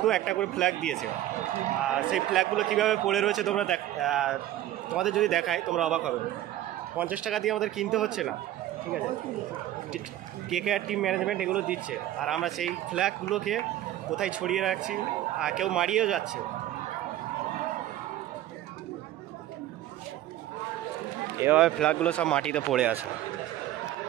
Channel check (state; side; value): quieter; left; 13.6 dB